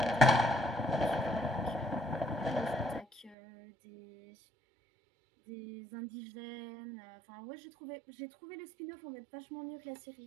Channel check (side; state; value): left; drops out; at 3.4 s